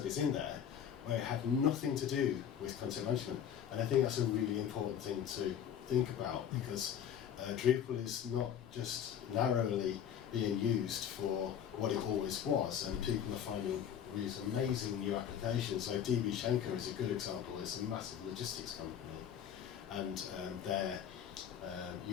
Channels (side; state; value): right; quieter; 9.0 dB